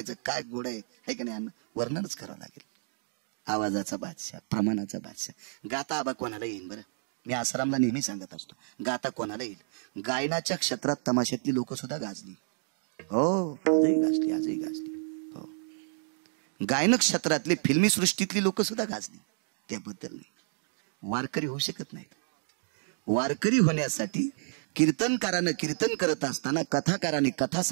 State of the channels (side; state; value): left; silent; digital silence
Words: काय घोडं आहे का नाही, वर्णनच करावं लागेल. आवाजाचा बादशाह, प्रमाणाचा बादशाह. गाता आबा कोणाला येईल बरं, मी आसारामला नेहमी सांगत असतो, गाता कोणाला येईल. गायनाच्या क्षेत्रात तमाशातली लोक सुद्धा गाजली. हो, आजही गाजली. हो, गायन क्षेत्रातली फिल्मी सृष्टीतली लोक सुद्धा गाजली, त्याबद्दल नाही. वारकरी होऊ शकत नाहीत. वारकरी होण्यासाठी कीर्तनकारानं कीर्तन करत असताना, कथाकाराने कथा